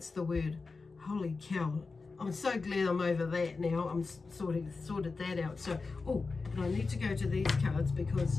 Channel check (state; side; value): quieter; right; 4.2 dB